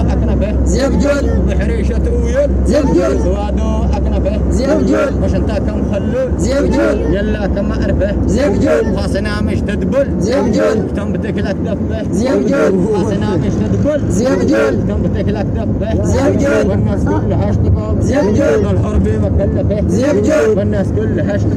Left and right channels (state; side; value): identical; both; correlation 1.00